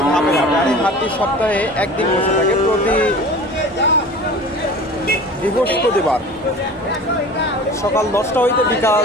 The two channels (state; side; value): normal; both; correlation 0.39